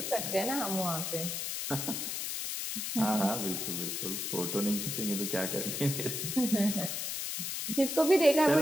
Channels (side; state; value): left; noise; hiss, 3 dB below the sound